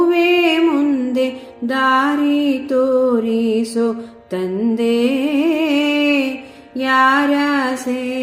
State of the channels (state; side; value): identical; both; correlation 1.00